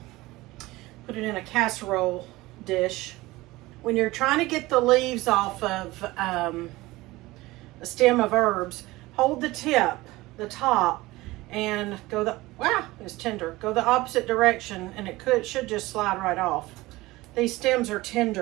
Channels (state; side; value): quieter; left; 19.6 dB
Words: put it in a casserole dish. When you're trying to get the leaves off of a stem of herbs, hold the tip, the top, and go it's tender. Go the opposite direction and it should just slide right off. These stems are